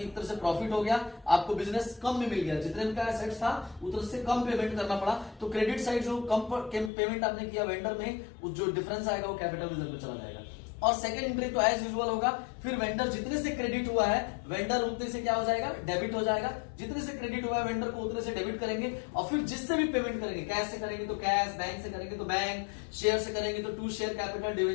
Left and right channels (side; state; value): right; drops out; at 6.9 s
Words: एक तरह से प्रॉफिट हो गया, आपको बिजनेस कम में मिल गया, जितने का एसेट्स था उतना से कम पेमेंट करना पड़ा, तो क्रेडिट साइड जो कम पेमेंट आपने किया वेंडर में, जो डिफरेंस आएगा वो कैपिटल रिजर्व में चला जाएगा। और सेकंड एंट्री तो एज यूजुअल होगा, फिर वेंडर जितने से क्रेडिट हुआ है, वेंडर उतने से क्या हो जाएगा, डेबिट हो जाएगा। जितने से क्रेडिट हुआ है वेंडर को उतने से डेबिट करेंगे, और फिर जिससे भी पेमेंट करेंगे, कैश से करेंगे तो कैश, बैंक से करेंगे तो बैंक, शेयर से करेंगे तो टू शेयर कैपिटल,